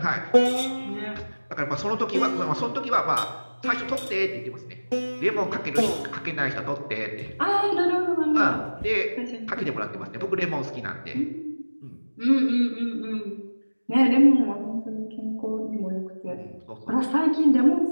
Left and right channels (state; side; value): inverted; both; correlation -1.00